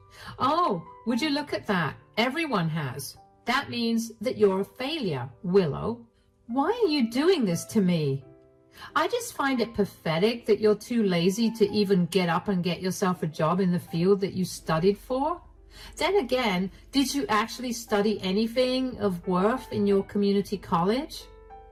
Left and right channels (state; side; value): identical; both; correlation 1.00